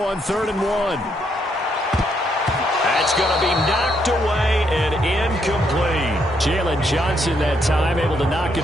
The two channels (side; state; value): both; normal; correlation 0.75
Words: on 3rd and 1. That's going to be knocked away and incomplete. Jalen Johnson that time able to knock